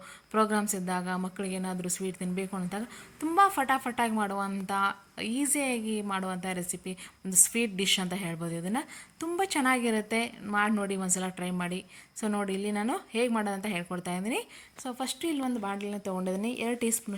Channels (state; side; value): identical; both; correlation 1.00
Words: ಪ್ರೋಗ್ರಾಮ್ಸ್ ಇದ್ದಾಗ, ಮಕ್ಕಳಿಗೆ ಏನಾದರೂ ಸ್ವೀಟ್ ತಿನ್ನಬೇಕು ಅಂತಾಗ ತುಂಬ ಫಟಾಫಟಾಗಿ ಮಾಡುವಂಥ, ಈಸಿಯಾಗಿ ಮಾಡುವಂಥ ರೆಸಿಪಿ, ಒಂದು ಸ್ವೀಟ್ ಡಿಶ್ ಅಂತ ಹೇಳ್ಬೋದು. ಇದನ್ನು ತುಂಬ ಚೆನ್ನಾಗಿರುತ್ತೆ. ಮಾಡಿ ನೋಡಿ, ಒಂದ್ಸಲ ಟ್ರೈ ಮಾಡಿ. ಸೊ ನೋಡಿ, ಇಲ್ಲಿ ನಾನು ಹೇಗೆ ಮಾಡೋದಂತ ಹೇಳ್ಕೊಡ್ತಾ ಇದ್ದೀನಿ. ಸೊ ಫಸ್ಟು ಇಲ್ಲಿ ಒಂದು ಬಾಣಲಿನ ತೊಗೊಂಡಿದ್ದೀನಿ. 2 ಟೀ